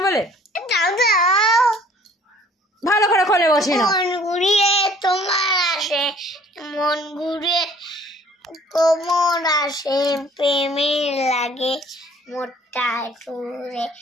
বলে। ভালো করে খোলে বসে না। মন ঘুরিয়ে তোমার আসে, মন ঘুরিয়ে কোমর আসে, প্রেমের লাগে মোটা সুরে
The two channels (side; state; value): both; normal; correlation 0.55